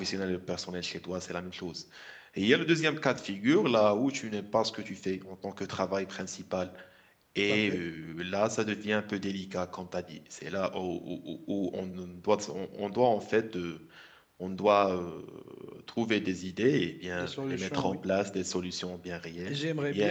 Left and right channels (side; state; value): both; identical; correlation 1.00